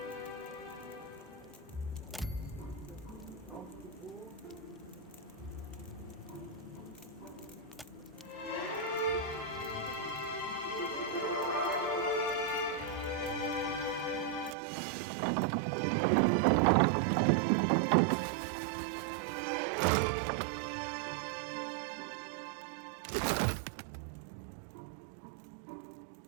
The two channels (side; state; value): left; drops out; at 14.6 s